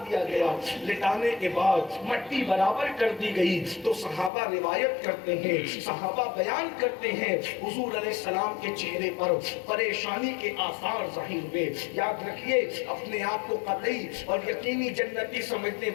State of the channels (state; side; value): drops out; right; at 4.3 s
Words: دیا گیا. لٹانے کے بعد مٹی برابر کر دی گئی تو صحابہ روایت کرتے ہیں, صحابہ بیان کرتے ہیں, حضور علیہ السلام کے چہرے پر پریشانی کے آثار ظاہر ہوئے. یاد رکھیے اپنے آپ کو قطعی اور یقینی جنتی سمجھنے